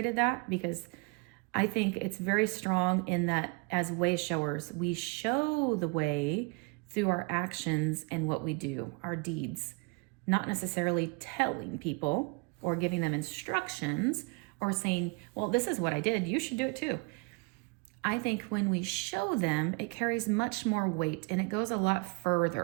that, because I think it's very strong in that as way showers, we show the way through our actions and what we do, our deeds, not necessarily telling people or giving them instructions or saying, well, this is what I did, you should do it too. I think when we show them, it carries much more weight and it goes a lot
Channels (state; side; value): quieter; left; 28.9 dB